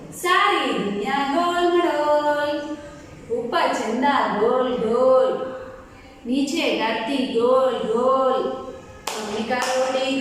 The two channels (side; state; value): both; identical; correlation 1.00